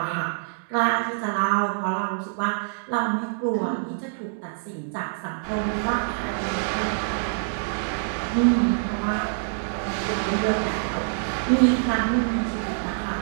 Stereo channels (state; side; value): silent; left; digital silence